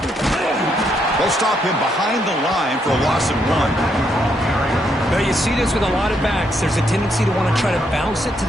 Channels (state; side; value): normal; both; correlation 0.76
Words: They'll stop him behind the line for a loss of 1. Now you see this with a lot of backs. There's a tendency to want to try to bounce it to